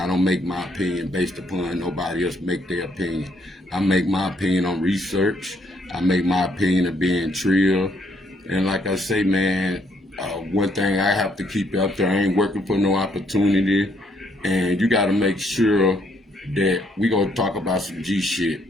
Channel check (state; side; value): normal; both; correlation 0.70